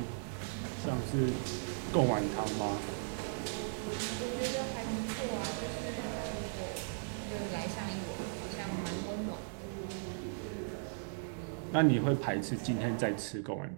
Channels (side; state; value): left; silent; digital silence